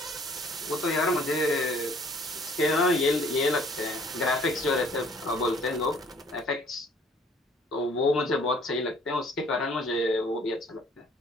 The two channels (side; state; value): both; normal; correlation 0.57